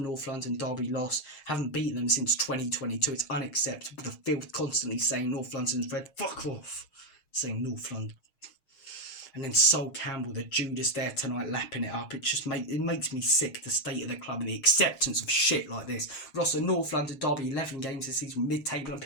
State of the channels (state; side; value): late; right; 6.5 ms